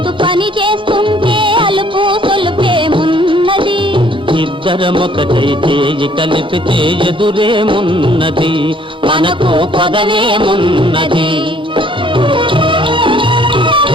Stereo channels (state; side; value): normal; both; correlation 0.60